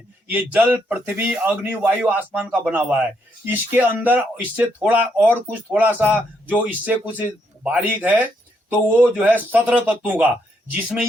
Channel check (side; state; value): both; normal; correlation 0.76